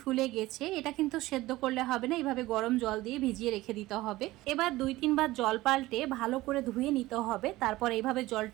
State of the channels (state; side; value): quieter; left; 18.1 dB